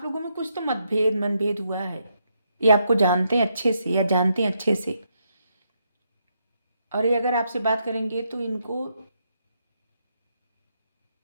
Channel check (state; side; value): inverted; both; correlation -0.78